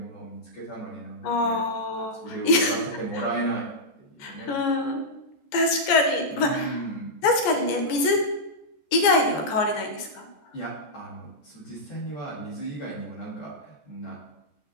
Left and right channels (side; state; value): right; late; 14 ms